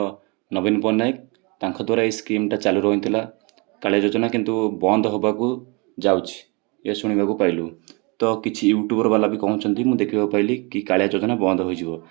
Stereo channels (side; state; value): left; quieter; 30.1 dB